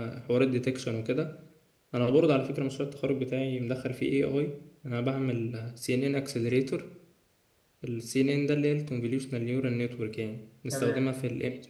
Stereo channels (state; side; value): identical; both; correlation 1.00